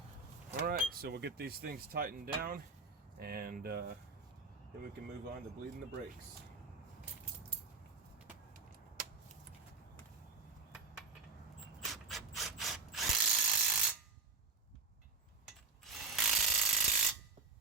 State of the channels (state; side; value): quieter; left; 4.1 dB